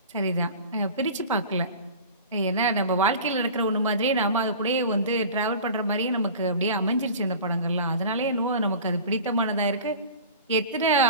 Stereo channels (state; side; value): inverted; both; correlation -0.38